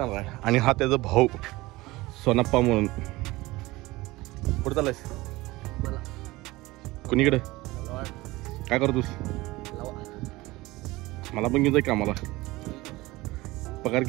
आहे आणि हा त्याचा भाऊ सोनाप्पा म्हणून कुठं चालायस कुणीकडे काय करतोस मला पण घेऊन जाय कामाला पगार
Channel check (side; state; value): left; quieter; 20.2 dB